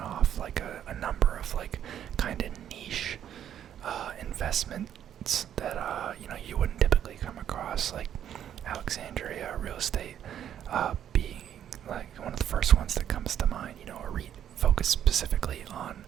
like a number of like kind of niche investments that you wouldn't typically come across, like Alexandria real estate being like one of the first ones that comes to mind. A REIT focused specifically on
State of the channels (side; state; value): left; quieter; 10.0 dB